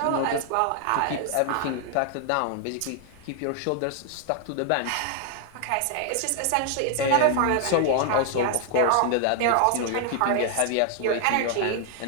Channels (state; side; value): different; both; correlation 0.00